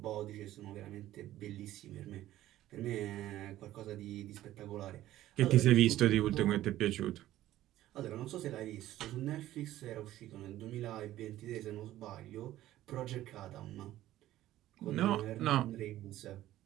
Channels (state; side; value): quieter; left; 14.2 dB